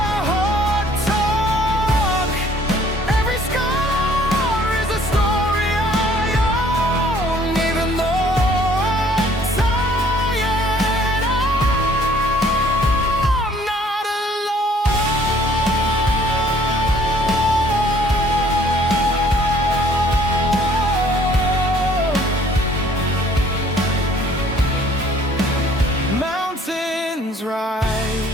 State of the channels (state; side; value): normal; both; correlation 0.58